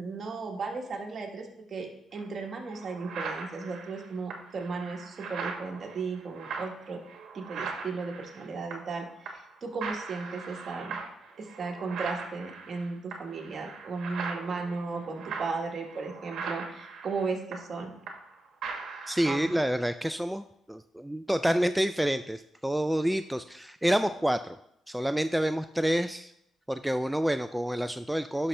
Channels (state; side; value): normal; both; correlation 0.92